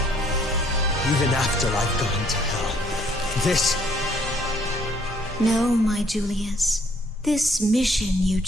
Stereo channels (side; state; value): both; normal; correlation 0.63